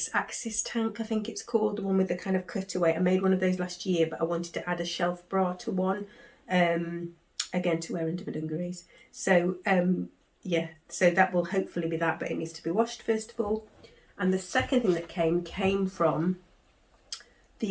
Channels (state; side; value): identical; both; correlation 1.00